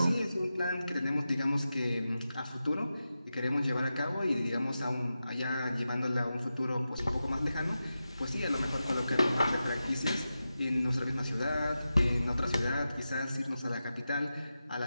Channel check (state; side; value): inverted; both; correlation -0.92